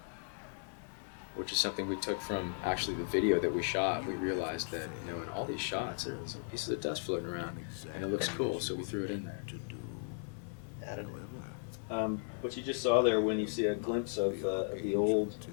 which is something we took from actually the video that we shot. We realized that in all these shots there's pieces of dust floating around, and it looks cool, so we threw it in there. What you just saw there, when you see a glimpse of the old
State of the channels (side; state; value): right; silent; digital silence